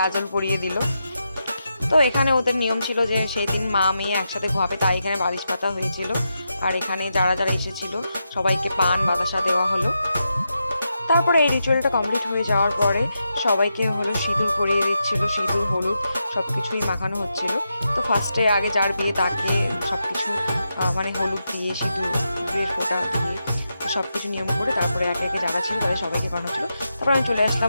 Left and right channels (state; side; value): inverted; both; correlation -0.86